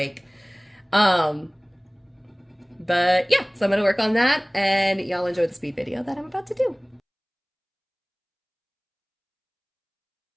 But yeah, so I'm going to work on that, and y'all enjoy the speed video that I'm about to do.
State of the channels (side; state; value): both; identical; correlation 1.00